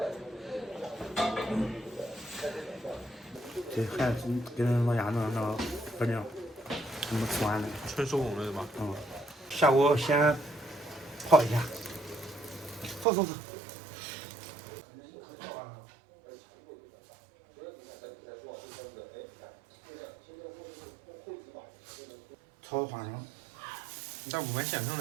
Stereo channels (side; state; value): left; drops out; at 13.1 s